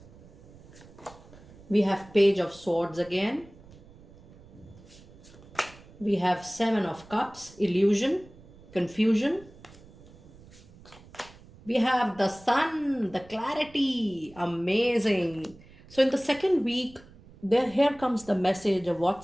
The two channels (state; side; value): noise; right; rumble, 22 dB below the sound